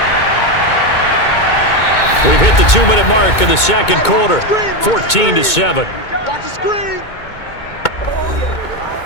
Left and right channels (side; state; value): right; late; 2.2 ms